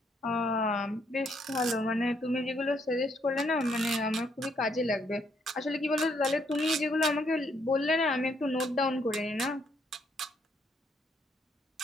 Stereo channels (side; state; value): both; normal; correlation 0.72